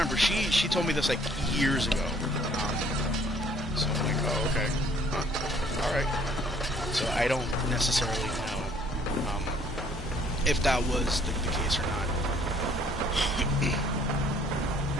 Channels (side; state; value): both; normal; correlation 0.60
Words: She told me this like years ago. So I'm like, oh, okay, all right. So I don't necessarily know if that was the case or not.